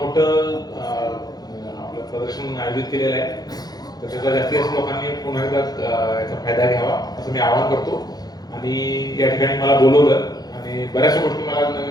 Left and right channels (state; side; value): late; right; 0.19 ms